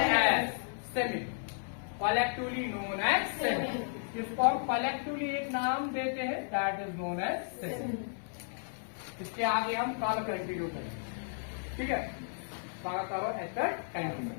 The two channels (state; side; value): silent; right; 55 dB below the other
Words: as semen. collectively known as semen. इसको हम collectively एक नाम देते हैं, that is known as semen. इसके आगे हम कल कंटिन्यू करेंगे. ठीक है. स्वागत करो एस्टर टाइम।